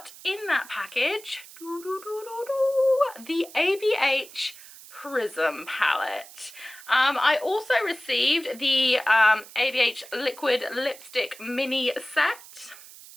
in that package the ABH Prism palette. I also received the ABH liquid lipstick mini set.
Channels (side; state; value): right; noise; hiss, 18 dB below the sound